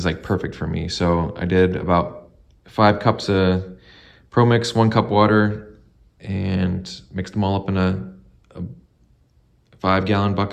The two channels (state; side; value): identical; both; correlation 1.00